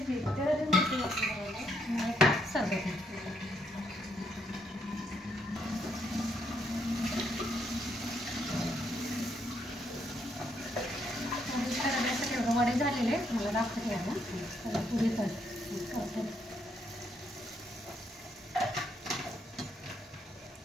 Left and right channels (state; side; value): normal; both; correlation 0.74